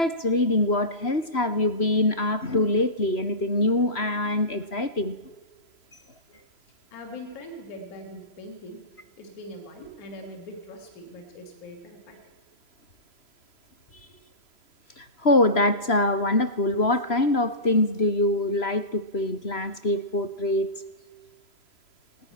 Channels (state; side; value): late; right; 3.0 ms